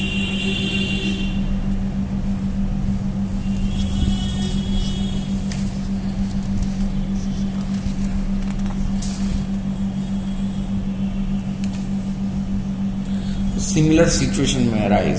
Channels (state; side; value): identical; both; correlation 1.00